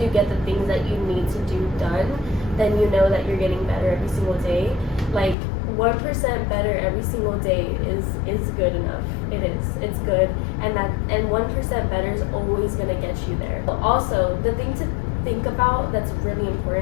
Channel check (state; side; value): drops out; right; at 5.4 s